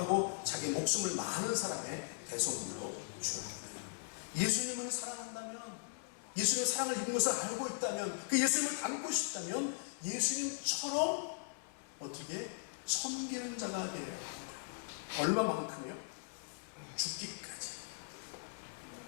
자기 목숨을 많은 사람의 대속물로 주려 합니다. 예수님을 사랑한다면 예수님의 사랑을 입은 것을 알고 있다면, 그 예수님을 닮고 싶다면 예수님처럼 어떻게 섬기는 자가 되어야 합니다. 얼마만큼요? 죽기까지.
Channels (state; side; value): silent; right; digital silence